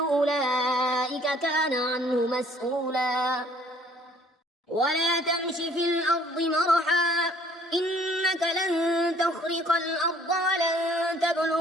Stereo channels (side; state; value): both; normal; correlation 0.58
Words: كان عنه مسؤولا ولا تمش في الأرض مرحا إنك لن تخرق الأرض ولن